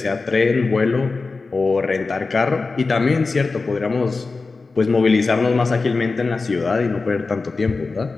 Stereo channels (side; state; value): right; quieter; 4.0 dB